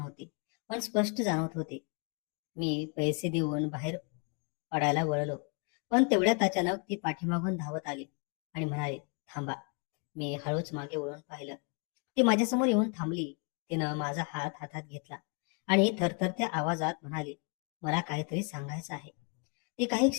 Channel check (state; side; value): quieter; right; 35.7 dB